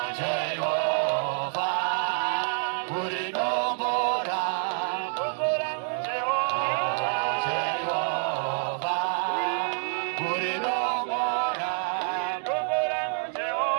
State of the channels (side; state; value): left; silent; 60 dB below the other